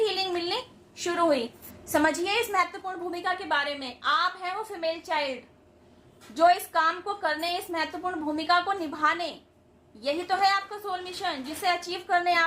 मिलनी शुरू हुई। समझिए इस महत्वपूर्ण भूमिका के बारे में। आप हैं वो फीमेल चाइल्ड जो इस काम को करने, इस महत्वपूर्ण भूमिका को निभाने, यही तो है आपका सोल मिशन जिसे अचीव करने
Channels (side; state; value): both; identical; correlation 1.00